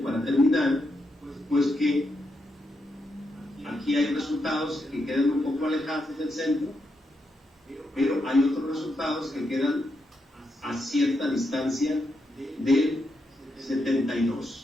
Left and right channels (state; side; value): normal; both; correlation 0.83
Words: para terminar, pues que aquí hay resultados que quedan un poco alejados del centro, pero hay otros resultados que quedan a cierta distancia del